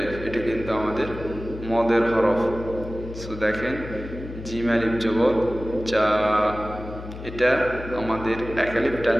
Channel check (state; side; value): noise; left; hum, 11 dB below the sound